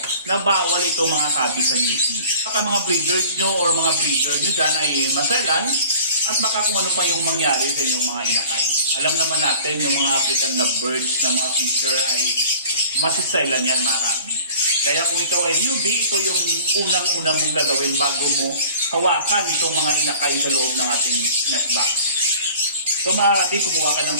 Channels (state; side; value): inverted; both; correlation -0.46